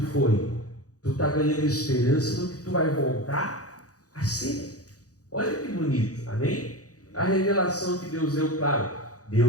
foi, tu está ganhando esperança no que tu vai voltar a ser. Olha que bonito, amém? A revelação que Deus deu, claro,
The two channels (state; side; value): late; right; 0.67 ms